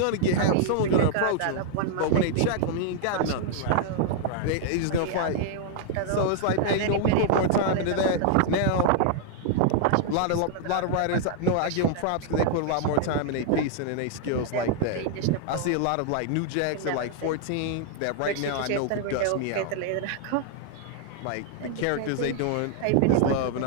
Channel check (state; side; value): different; both; correlation 0.00